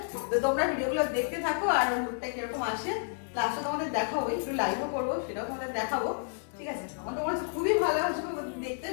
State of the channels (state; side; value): silent; right; digital silence